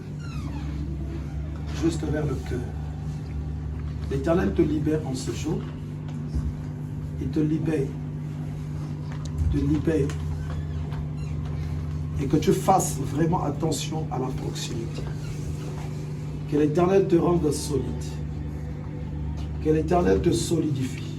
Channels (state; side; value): identical; both; correlation 1.00